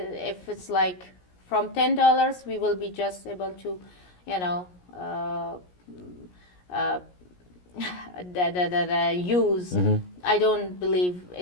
it's like from $10, we will be just able to, use. I don't believe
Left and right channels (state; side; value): late; right; 17 ms